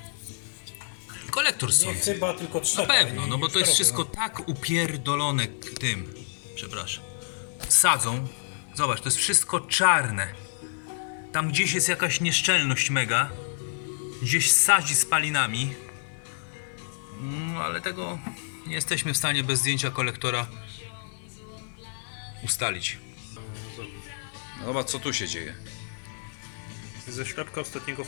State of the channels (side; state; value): right; silent; digital silence